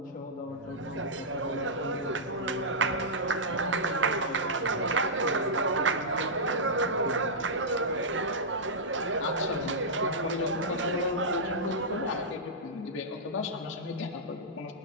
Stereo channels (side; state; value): both; normal; correlation -0.12